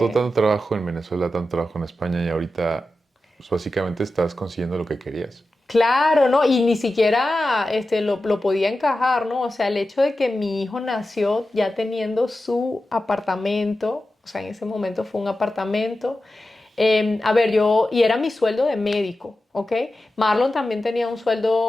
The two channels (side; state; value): both; normal; correlation 0.92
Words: trabajo en Venezuela, tanto trabajo en España y ahorita pues, básicamente estás consiguiendo lo que querías? claro, ¿no? Y ni siquiera lo podía encajar, ¿no? O sea, el hecho de que mi hijo nació ya teniendo su apartamento, o sea, en ese momento fue un apartamento. A ver, y era mi sueldo de médico, ¿ok? Marlon también tenía un